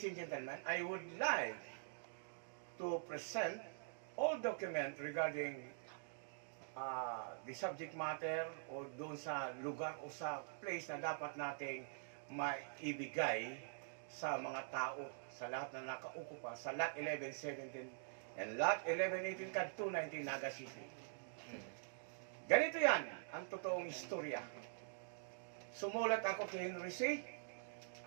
and gentlemen, I would like to present all documents regarding the subject matter o doon sa lugar o sa place na dapat nating maibigay sa mga tao, sa lahat na nakaukupa, sa Lot 1117 and Lot 1118 kad 219 Naga City. Ganito yan, ang totoong istorya. Sumulat ako kay Henry C.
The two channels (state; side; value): silent; left; digital silence